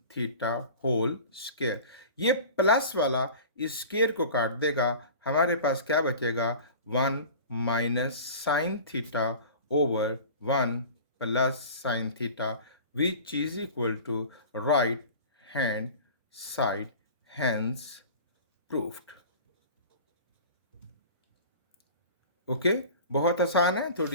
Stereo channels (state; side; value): inverted; both; correlation -0.39